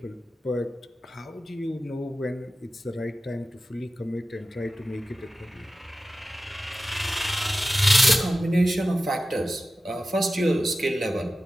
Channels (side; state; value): both; normal; correlation 0.94